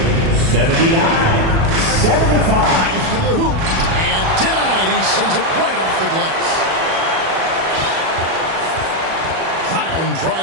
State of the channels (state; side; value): late; left; 37 ms